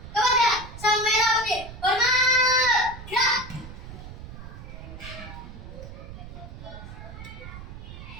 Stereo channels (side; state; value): right; noise; rumble, 13 dB below the sound